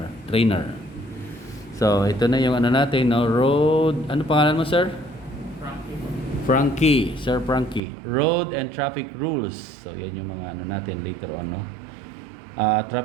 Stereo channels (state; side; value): drops out; left; at 7.8 s